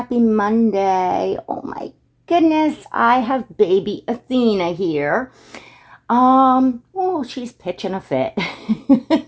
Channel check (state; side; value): identical; both; correlation 1.00